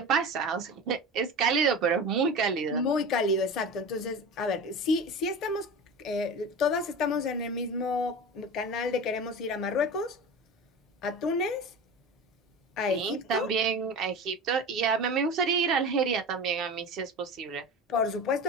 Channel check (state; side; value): normal; both; correlation 0.30